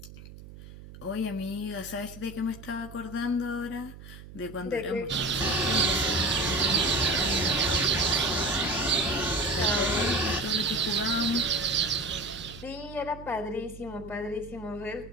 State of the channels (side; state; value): right; noise; hum, 16 dB below the sound